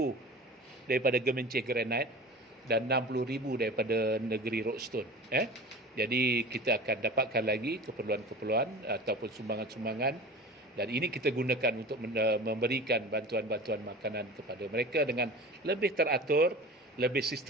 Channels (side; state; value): both; normal; correlation 0.36